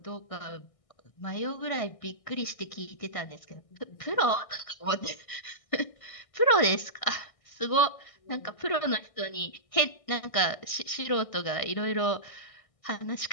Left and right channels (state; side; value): late; right; 1.6 ms